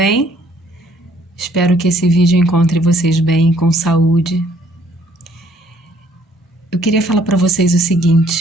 Espero que esse vídeo encontre vocês bem, com saúde. Eu queria falar para vocês o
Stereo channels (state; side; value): normal; both; correlation 0.62